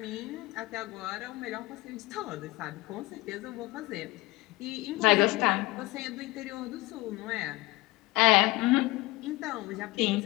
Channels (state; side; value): quieter; right; 20.3 dB